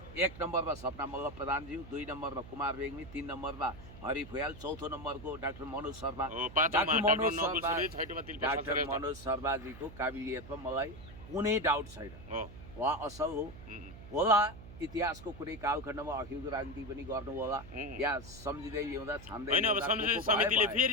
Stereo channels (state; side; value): noise; right; hum, 16 dB below the sound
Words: 1 नम्बरमा सपना मल्ल प्रधानज्यू, 2 नम्बरमा कुमार रेग्मी, 3 नम्बरमा हरि फुयाल, 4थो नम्बरको डाक्टर मनोज शर्मा। डाक्टर मनोज शर्माजीको काबिलियतमा मलाई कुनै डाउट छैन, उहाँ असल हो होला। इतिहासको कुनै कालखण्डमा अखिलको राजनीति पनि गर्नु होला या सम्झिँदै ल्याउँदा छान्दै होइन। अब संसदीय समितिले